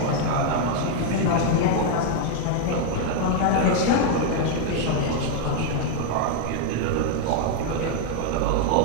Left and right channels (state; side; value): different; both; correlation 0.00